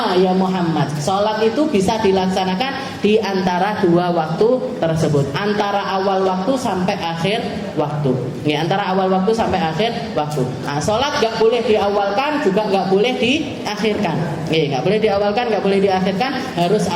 ya Muhammad. Salat itu bisa dilaksanakan di antara dua waktu tersebut, antara awal waktu sampai akhir waktu. Antara awal waktu sampai akhir waktu. Salat nggak boleh diawalkan, juga nggak boleh diakhirkan. Nggak boleh diawalkan, nggak boleh diakhirkan, harus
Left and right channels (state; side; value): identical; both; correlation 1.00